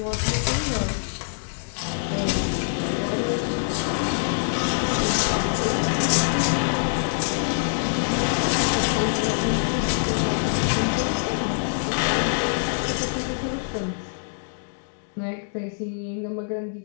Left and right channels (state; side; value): silent; right; digital silence